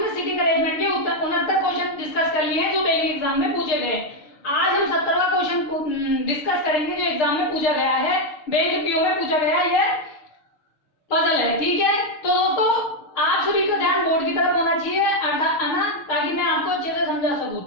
सिटिंग अरेंजमेंट के 69 क्वेश्चन डिस्कस कर लिए हैं जो बैंक एग्जाम में पूछे गए। आज हम 70वां क्वेश्चन डिस्कस करेंगे जो एग्जाम में पूछा गया है, बैंक पीओ में पूछा गया ये पजल है। ठीक है, तो दोस्तों आप सभी का ध्यान बोर्ड की तरफ होना चाहिए अर्थात है ना, ताकि मैं आपको अच्छे से समझा सकूं।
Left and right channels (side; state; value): right; late; 6.6 ms